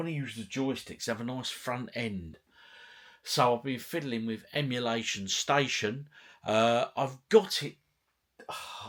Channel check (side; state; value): both; identical; correlation 1.00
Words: to use the joysticks, have a nice front end. So I've been fiddling with Emulation Station. I've got it.